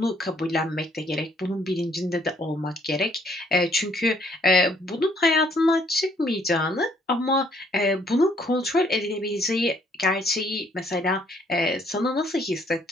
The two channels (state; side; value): normal; both; correlation 0.65